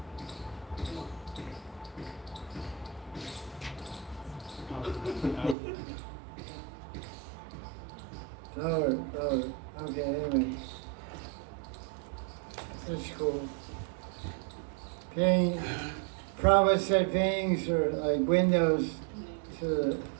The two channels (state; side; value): drops out; left; at 5.6 s